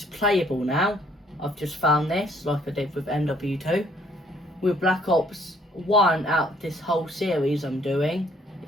playable now. I've just found this, like I did with MW2. With Black Ops 1 out of this whole series I'm doing,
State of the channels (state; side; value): normal; both; correlation 0.64